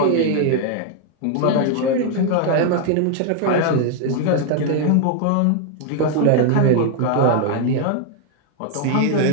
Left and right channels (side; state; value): both; different; correlation 0.00